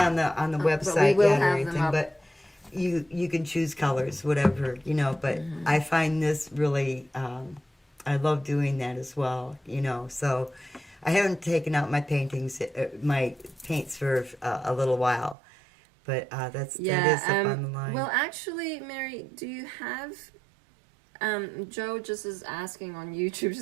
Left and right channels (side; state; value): left; drops out; at 15.4 s